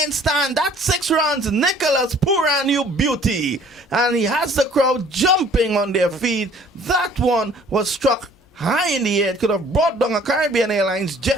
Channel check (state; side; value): normal; both; correlation 0.54